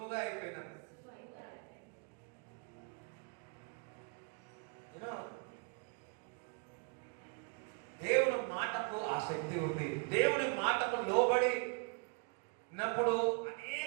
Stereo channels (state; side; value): quieter; left; 35.9 dB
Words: అయిపోయినా. దేవుని మాటకు ఆ శక్తి ఉంది. దేవుని మాటకు లోబడినప్పుడు